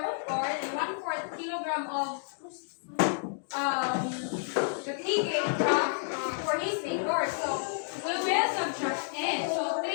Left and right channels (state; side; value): silent; right; digital silence